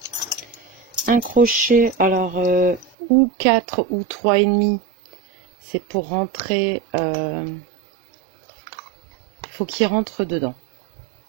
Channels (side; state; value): left; drops out; at 2.9 s